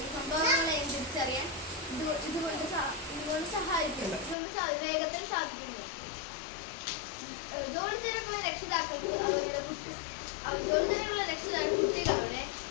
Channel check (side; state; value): right; drops out; at 4.4 s